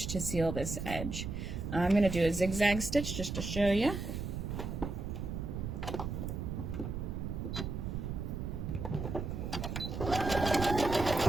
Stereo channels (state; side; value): noise; right; rumble, 4 dB below the sound